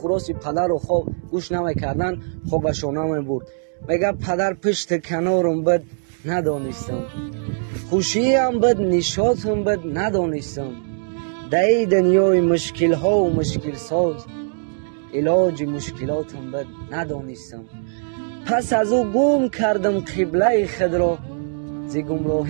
پدر رو خواب گوش نمیکردن. خوابشون نمیبرد. میگه پدر پشت کنارم بد ندانستم، خوشی هم بد نشاط هم بد ندانستم، در دنیای مشکل ها و مشکل ساز علاج مشکلات هم بد ندانستم. پس از او گم کردم قبله خود را، ز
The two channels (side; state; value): left; silent; digital silence